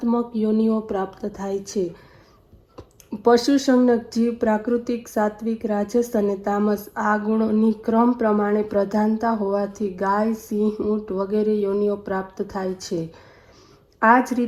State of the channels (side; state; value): both; identical; correlation 1.00